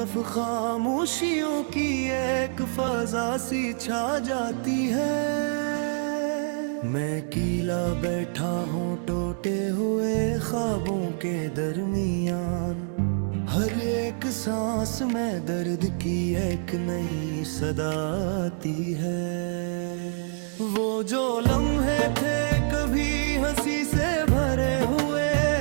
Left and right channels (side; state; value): left; silent; 61 dB below the other